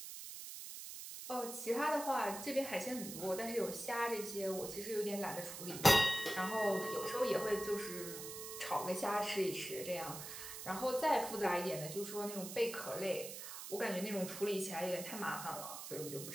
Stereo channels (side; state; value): right; noise; hiss, 9 dB below the sound